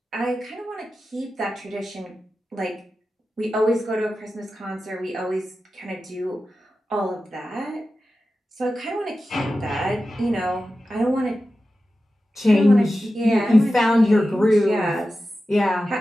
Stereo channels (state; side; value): normal; both; correlation 0.93